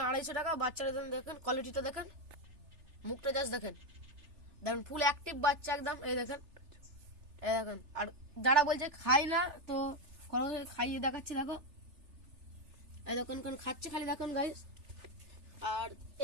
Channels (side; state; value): left; late; 3.3 ms